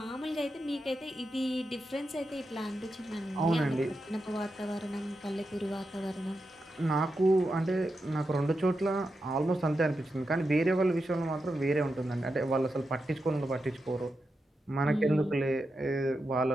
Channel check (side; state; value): both; normal; correlation 0.88